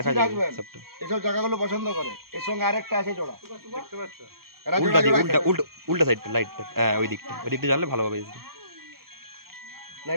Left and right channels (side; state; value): left; late; 0.94 ms